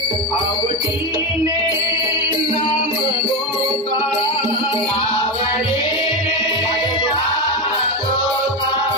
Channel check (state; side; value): normal; both; correlation 0.14